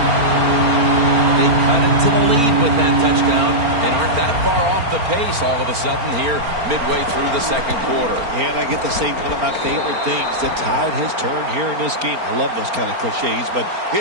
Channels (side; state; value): left; late; 4.4 ms